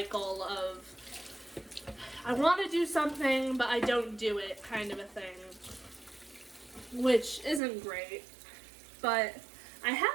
of I want to do something, but I don't do it kind of a thing, which isn't great. But I have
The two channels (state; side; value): drops out; left; at 7.6 s